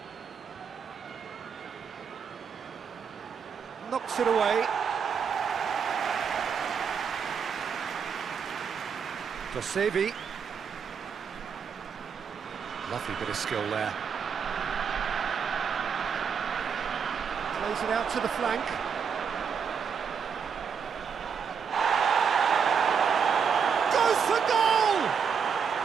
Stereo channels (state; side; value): quieter; left; 6.7 dB